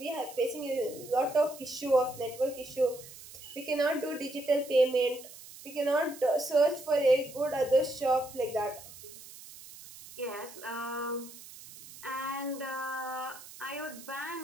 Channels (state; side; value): noise; right; hiss, 17 dB below the sound